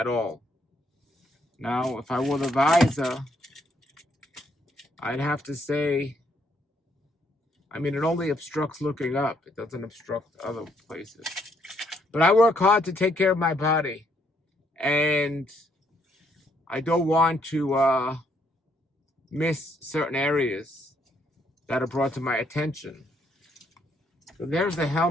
all. Now, if I wore the visor, I'd have to say, I mean, it only obstructs looking up. It doesn't obstruct other places. But I work hard to take care of my body. And I don't want to miss certain areas that are brought to my attention. So there's the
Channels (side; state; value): both; normal; correlation 0.71